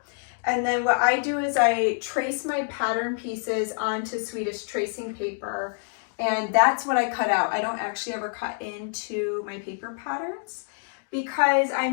And then what I do is I trace my pattern pieces onto Swedish tracing paper. And that's what I cut out. I don't actually ever cut into my paper patterns because I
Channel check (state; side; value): silent; right; 61 dB below the other